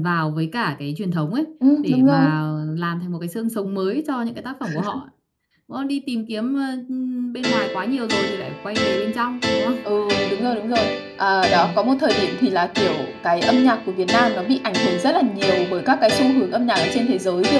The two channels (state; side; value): identical; both; correlation 1.00